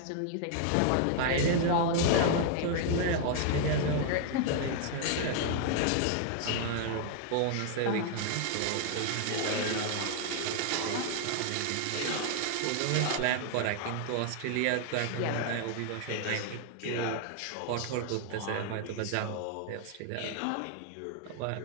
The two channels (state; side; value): different; both; correlation 0.00